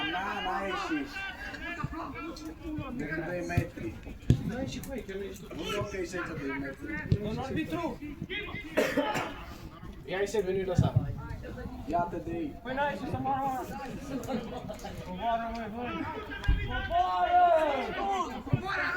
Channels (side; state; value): both; identical; correlation 1.00